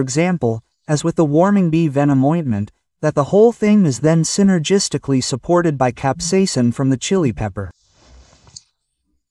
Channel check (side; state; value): both; identical; correlation 1.00